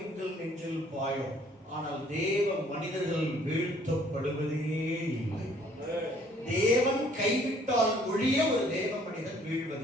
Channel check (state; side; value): normal; both; correlation 0.59